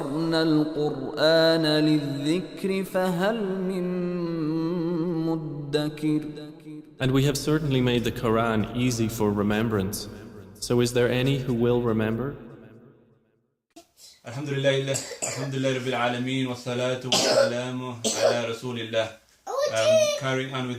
الْقُرْآنَ لِلذِّكْرِ فَهَلْ مِن مُدَّكِرٍ. And we have certainly made the Quran easy for remembrance. So is there any who will remember? Alhamdulillah Rabbil Alameen wa salatu wa salamu ala Rasulillah. Carrying on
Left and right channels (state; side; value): identical; both; correlation 1.00